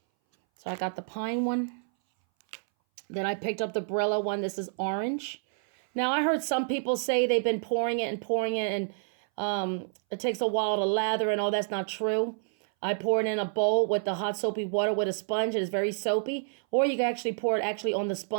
So I got the Pine one. Then I picked up the Brillo one. This is orange. Now, I heard some people say they've been pouring it, and it takes a while to lather, and all that's not true. I pour it in a bowl with the hot soapy water with a sponge. It is very soapy. Or you can actually pour it on the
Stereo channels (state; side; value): silent; left; 59 dB below the other